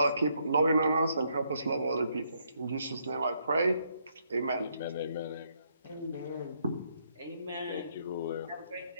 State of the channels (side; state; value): both; inverted; correlation -0.73